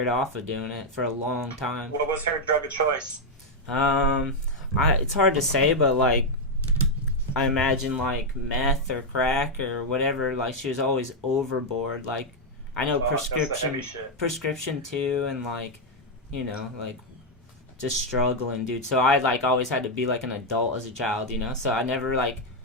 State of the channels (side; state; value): both; normal; correlation 0.00